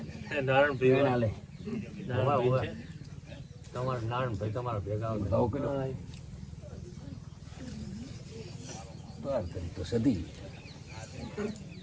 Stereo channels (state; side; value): identical; both; correlation 1.00